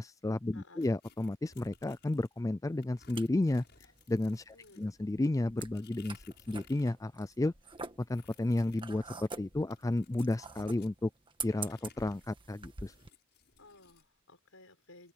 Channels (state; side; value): normal; both; correlation 0.92